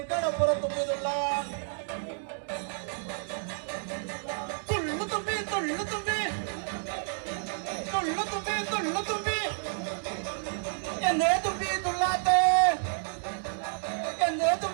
കടപ്പുറം തുമ്പിതുള്ളാൻ. തുള്ളു തുമ്പി തുള്ളു തുമ്പി തുള്ളു തുമ്പി തുള്ളു തുമ്പി എന്തേ തുമ്പി തുള്ളാത്തെ, എന്തേ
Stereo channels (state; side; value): silent; left; digital silence